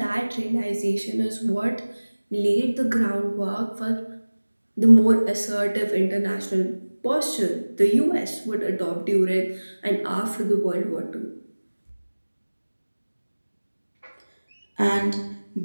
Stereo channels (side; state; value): both; inverted; correlation -1.00